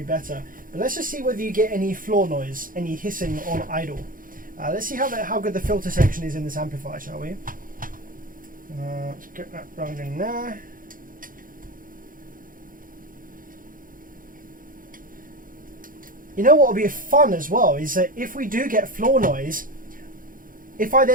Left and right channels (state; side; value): late; left; 0.40 ms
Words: better. But let's just see whether you get any floor noise, any hissing on idle. Let's see how good the filter section is in this amplifier, shall we? Let's get that running there. You know what will be fun as well is that if we do get floor noise, if I